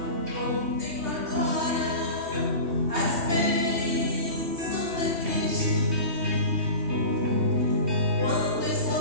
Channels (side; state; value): left; late; 2.8 ms